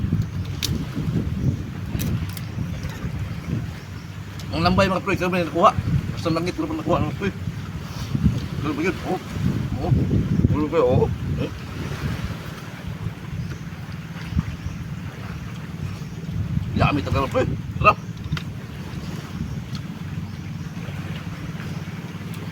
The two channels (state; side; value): identical; both; correlation 1.00